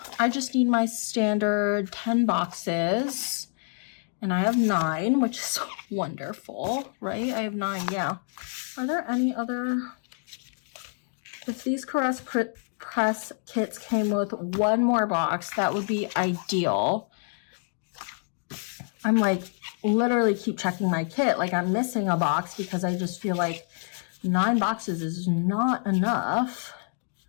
I just need my standard 10 boxes, and I have 9, which is wonderful, right? I have 9, yeah. Are there any other? If these Caress Press kits came with one more box, that would be ideal. I'm like literally keep checking my kit, like I'm missing a box because I just feel like 9 boxes is not enough,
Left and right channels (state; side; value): silent; right; 59 dB below the other